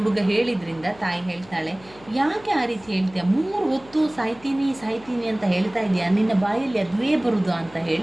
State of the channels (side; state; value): left; noise; hum, 24 dB below the sound